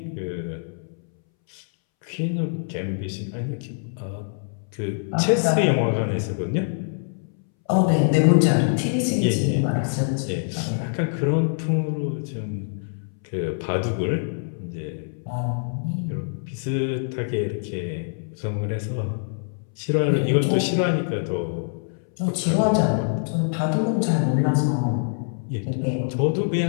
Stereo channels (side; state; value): right; silent; 62 dB below the other